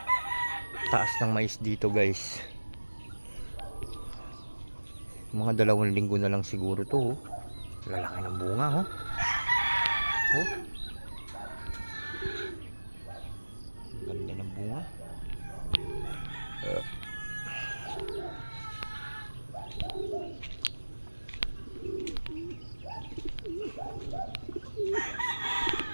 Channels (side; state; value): both; inverted; correlation -1.00